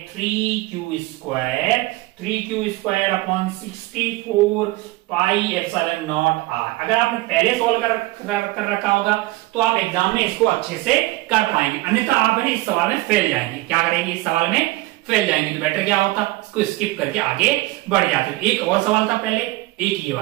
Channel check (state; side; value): quieter; left; 19.6 dB